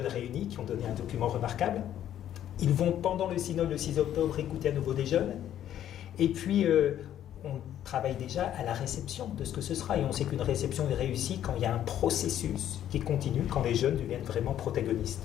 réunis qui ont donné un document remarquable. Ils vont pendant le synode le 6 octobre écouter à nouveau des jeunes. Et puis on travaille déjà à la réception de ce que ce sera. Et on sait qu'une réception est réussie quand il y a un processus qui continue, quand les jeunes deviennent vraiment protagonistes.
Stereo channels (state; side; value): quieter; right; 11.1 dB